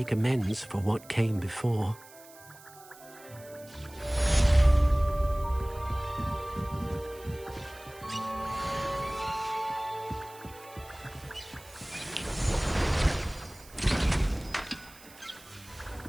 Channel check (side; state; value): right; noise; hiss, 21 dB below the sound